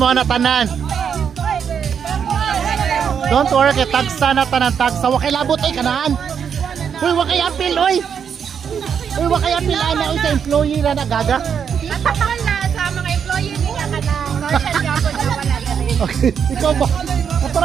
na tanan. Don't worry kay tagsa na tanan tagsa. Wa kay labot ay kanaan. Uy, wa kay apil, uy. Uy, wa kay apil ana uy sa employee na nagaga. Natakal na sa mga employee niya kanang Northern Gabon na wala dali. Okay, ikaw ba?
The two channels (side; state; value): left; quieter; 7.4 dB